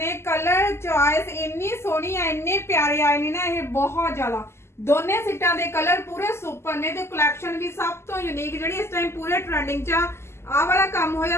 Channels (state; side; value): late; right; 0.12 ms